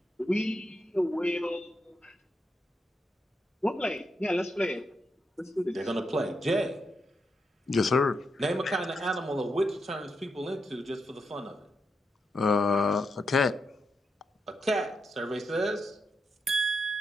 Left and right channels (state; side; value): normal; both; correlation 0.83